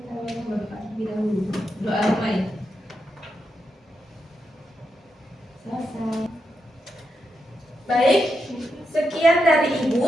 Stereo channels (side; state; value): both; normal; correlation 0.85